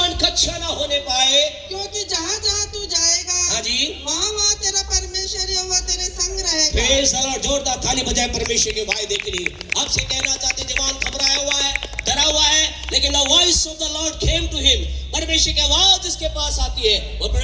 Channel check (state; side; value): identical; both; correlation 1.00